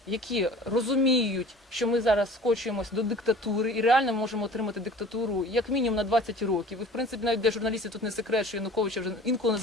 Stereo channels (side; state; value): both; normal; correlation 0.45